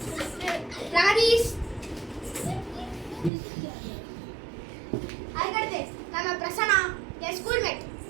பிரகதீஷ். அதுக்கடுத்து நம்ம பிரசன்னா என் ஸ்கூல்மேட்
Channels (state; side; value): drops out; left; at 3.3 s